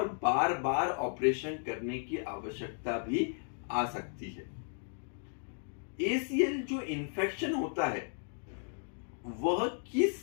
बार बार ऑपरेशन करने की आवश्यकता भी आ सकती है। एसीएल जो इन्फेक्शन होता है वह किस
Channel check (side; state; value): right; silent; 55 dB below the other